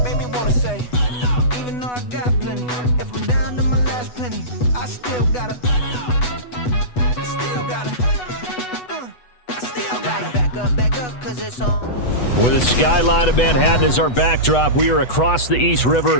Made me wanna say, even though I got plenty, if I'm down to my last penny, I still gotta back up, cause it's on. With the skyline of Manhattan as our backdrop, we are across the East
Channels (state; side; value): late; right; 8.1 ms